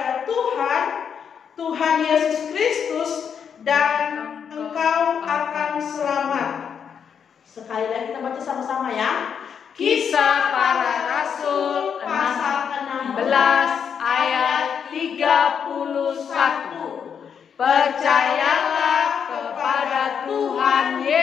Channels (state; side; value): quieter; right; 7.3 dB